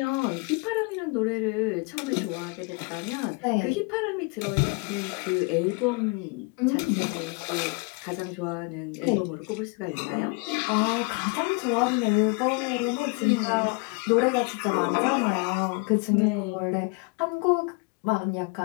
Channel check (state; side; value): quieter; right; 30.3 dB